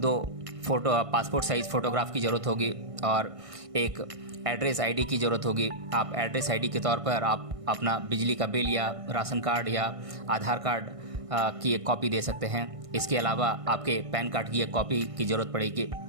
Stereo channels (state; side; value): late; left; 1.5 ms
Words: पासपोर्ट साइज़ फ़ोटोग्राफ की ज़रूरत होगी, और एक एड्रेस आईडी की ज़रूरत होगी। आप एड्रेस आईडी के तौर पर आप अपना बिजली का बिल या राशन कार्ड या आधार कार्ड की एक कॉपी दे सकते हैं। इसके अलावा आपके पैन कार्ड की एक कॉपी की ज़रूरत पड़ेगी।